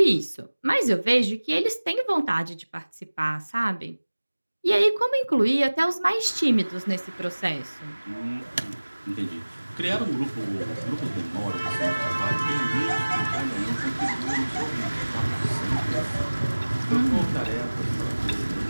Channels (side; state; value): both; inverted; correlation -1.00